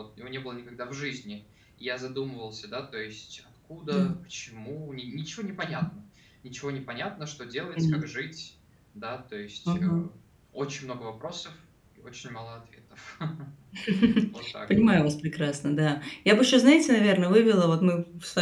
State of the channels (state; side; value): identical; both; correlation 1.00